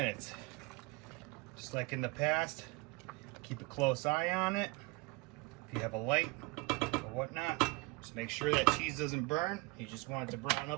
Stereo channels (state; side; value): quieter; left; 25.4 dB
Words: Just like in the past, keep a close eye on it. If you have a light or whatnot, just make sure that cheese doesn't burn. You just want it to brown